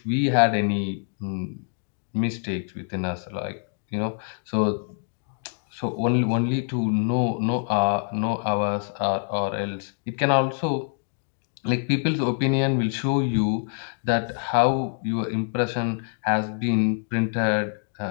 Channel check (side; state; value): right; silent; digital silence